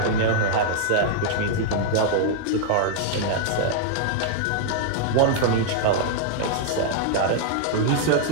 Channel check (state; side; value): different; both; correlation -0.01